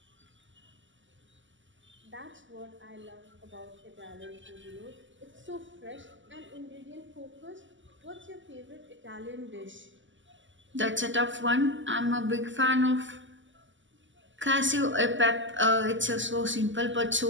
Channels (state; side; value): late; left; 0.55 ms